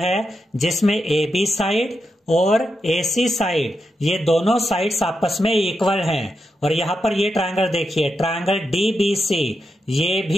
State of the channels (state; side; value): normal; both; correlation 0.86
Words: है जिसमें AB साइड और AC साइड ये दोनों साइड्स आपस में इक्वल हैं। और यहाँ पर ये ट्रायंगल देखिए ट्रायंगल DBC ये